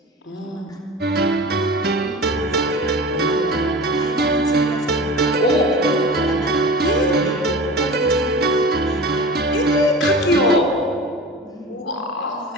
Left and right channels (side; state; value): both; normal; correlation 0.35